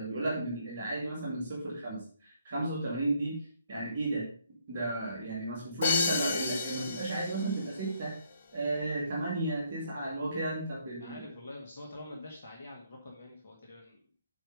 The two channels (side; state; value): both; inverted; correlation -0.70